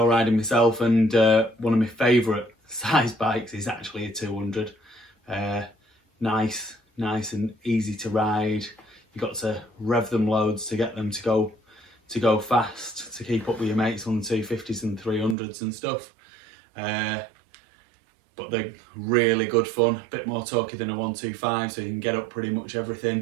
riding myself, and one of my favourite size bikes is actually a 200. Nice and easy to ride. You got to rev them loads to get them to go fast, to keep up with your mates on the 250s and 300s and stuff. But they're really good fun, a bit more torquey than a 125, so you can get up pretty much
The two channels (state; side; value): drops out; left; at 15.4 s